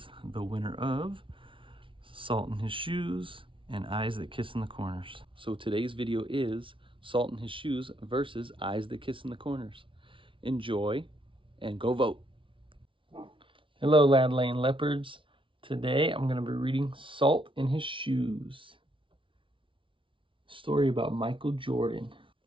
the winner of Salt in His Shoes and Eyes That Kiss in the Corners. So today's video is Salt in His Shoes versus Eyes That Kiss in the Corners. Enjoy and go vote. Hello, Lad Lane Leopards. Today I'm going to be reading Salt in His Shoes. Story about Michael Jordan.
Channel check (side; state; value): left; late; 0.25 ms